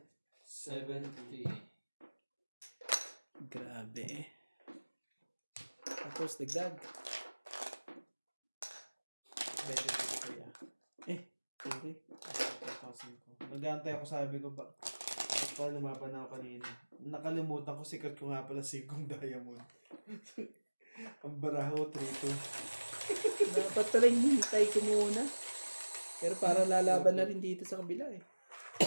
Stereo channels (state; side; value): inverted; both; correlation -1.00